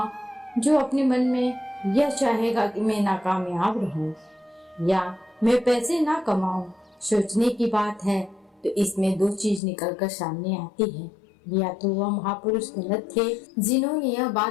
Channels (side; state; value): right; drops out; at 9.6 s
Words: जो अपने मन में यह चाहेगा कि मैं नाकामयाब रहूं या मैं पैसे ना कमाऊं। सोचने की बात है तो इसमें दो चीज निकलकर सामने आती है। या तो वह महापुरुष गलत थे जिन्होंने यह